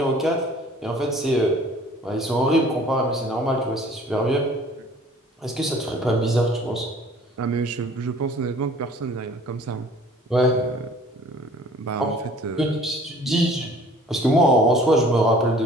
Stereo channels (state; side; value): normal; both; correlation 0.51